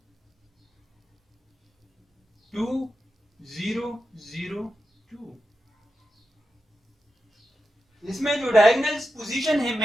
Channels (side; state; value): both; normal; correlation 0.89